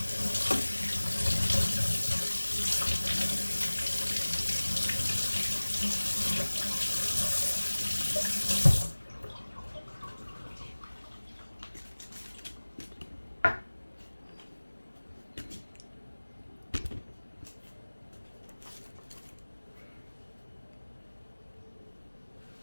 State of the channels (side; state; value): both; inverted; correlation -1.00